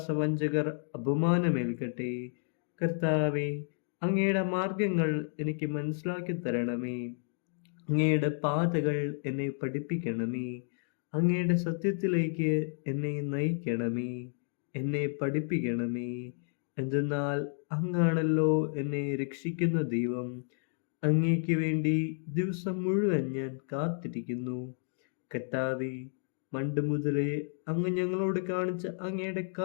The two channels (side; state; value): right; silent; digital silence